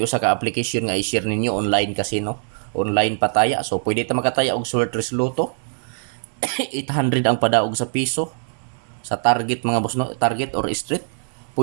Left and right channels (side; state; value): left; silent; 62 dB below the other